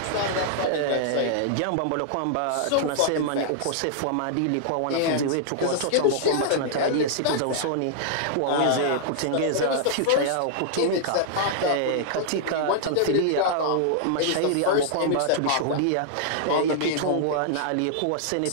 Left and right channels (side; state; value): both; different; correlation -0.01